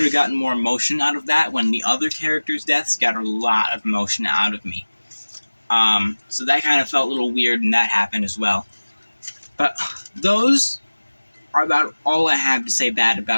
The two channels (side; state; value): both; inverted; correlation -1.00